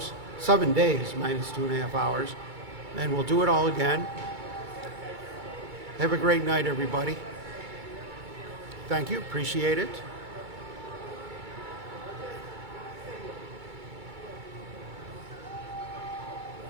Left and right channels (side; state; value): left; late; 2.3 ms